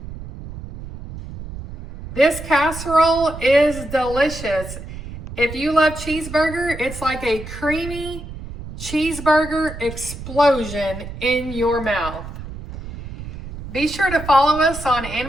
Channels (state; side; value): noise; right; rumble, 11 dB below the sound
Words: This casserole is delicious. If you love cheeseburger, it's like a creamy cheeseburger explosion in your mouth. Be sure to follow us on